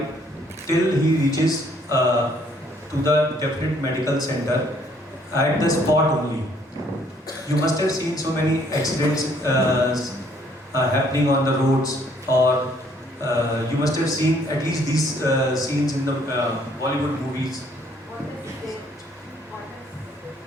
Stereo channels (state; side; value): normal; both; correlation 0.64